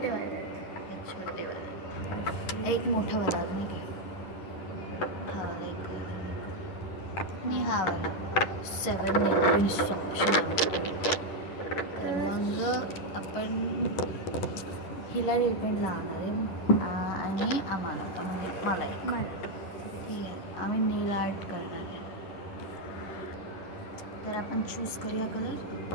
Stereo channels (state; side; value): late; right; 11 ms